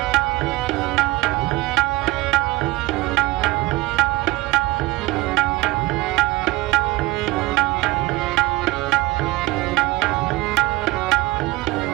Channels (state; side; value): quieter; left; 20.0 dB